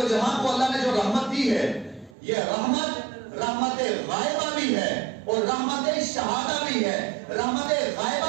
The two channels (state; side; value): drops out; left; at 2.1 s